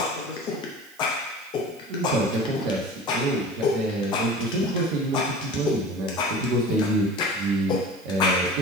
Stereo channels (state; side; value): noise; right; hiss, 25 dB below the sound